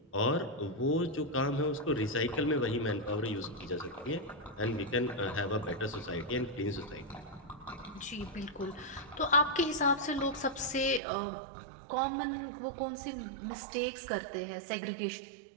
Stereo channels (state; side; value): drops out; left; at 11.0 s